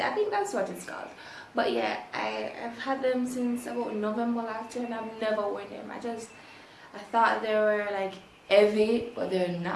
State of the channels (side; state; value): both; identical; correlation 1.00